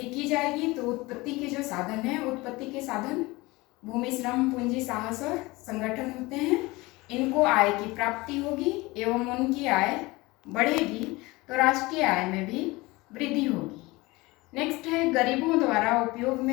की जाएगी तो उत्पत्ति के जो साधन हैं, उत्पत्ति के साधन भूमि, श्रम, पूंजी, साहस और संगठन होते हैं, इनको आय की प्राप्ति होगी एवं उनकी आय बढ़ेगी तो राष्ट्रीय आय में भी वृद्धि होगी। नेक्स्ट है गरीबों द्वारा उपयोग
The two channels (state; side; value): quieter; right; 22.1 dB